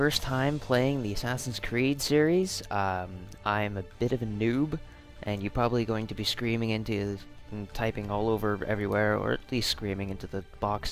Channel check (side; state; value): both; identical; correlation 1.00